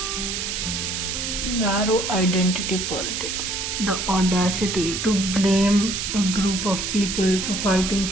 Narrow identity politics. The audacity to blame a group of people for fighting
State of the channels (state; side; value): noise; right; hiss, 3 dB below the sound